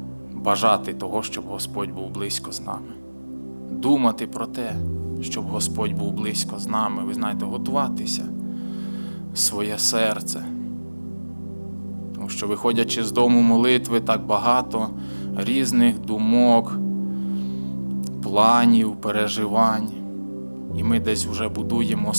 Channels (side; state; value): both; inverted; correlation -1.00